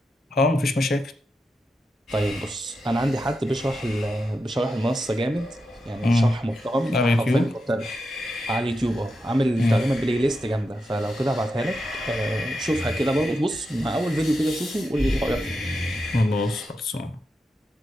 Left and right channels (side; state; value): both; normal; correlation 0.87